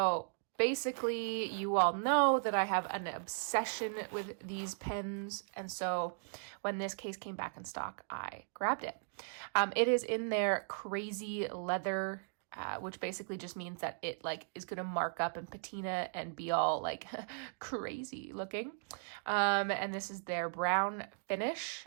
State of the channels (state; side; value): silent; left; digital silence